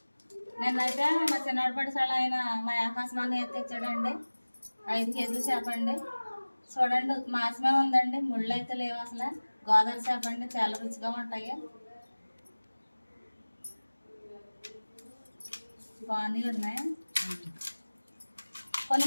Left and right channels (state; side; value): inverted; both; correlation -1.00